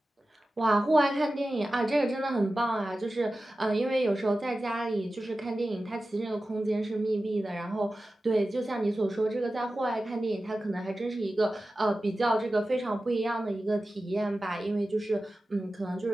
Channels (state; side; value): normal; both; correlation 0.94